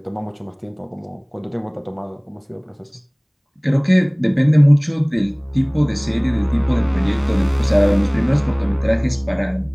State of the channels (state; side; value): identical; both; correlation 1.00